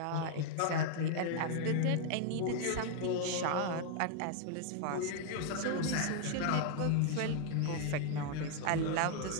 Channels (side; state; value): both; different; correlation 0.00